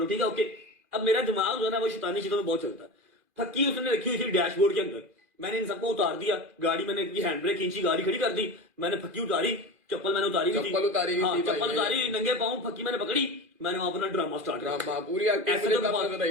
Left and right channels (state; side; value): late; left; 2.4 ms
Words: ठीक है ओके। अब मेरा दिमाग जो है ना वो शैतानी चीजों में बहुत चलता है। फक्की उसने रखी हुई थी डैशबोर्ड के अंदर, मैंने इन सबको उतार दिया, गाड़ी मैंने हैंड ब्रेक खींची, गाड़ी खड़ी कर दी, मैंने फक्की उतारी, चप्पल मैंने उतारी हुई थी, चप्पल उतारी हुई हाँ, थी, चप्पल उतारी, नंगे पाँव फक्की मैंने पकड़ी, मैंने वहां अपना ड्रामा स्टार्ट किया। ड्रामा पूरी एक्टिंग ऐसे मुझे तो तब बात- नजर